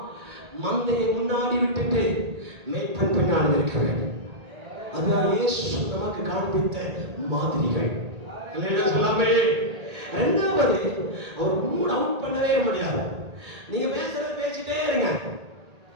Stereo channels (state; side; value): late; left; 1.8 ms